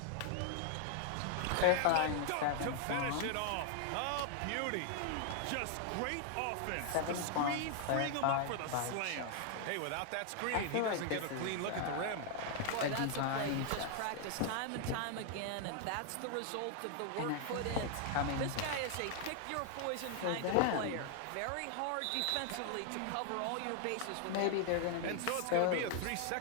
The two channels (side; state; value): both; different; correlation 0.00